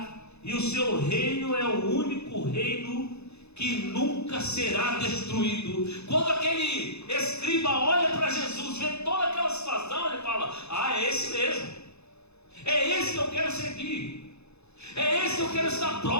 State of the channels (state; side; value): late; right; 0.80 ms